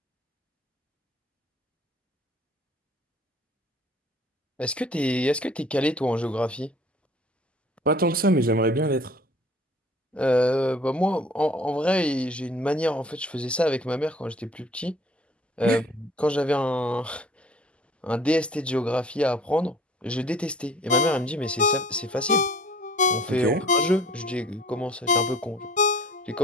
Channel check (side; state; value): both; normal; correlation 0.51